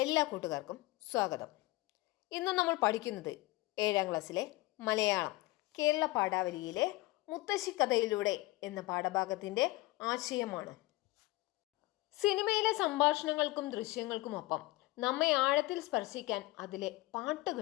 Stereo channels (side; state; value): right; quieter; 20.1 dB